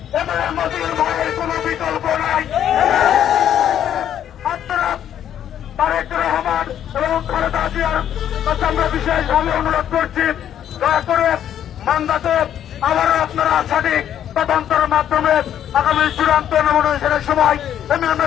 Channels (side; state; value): right; quieter; 10.2 dB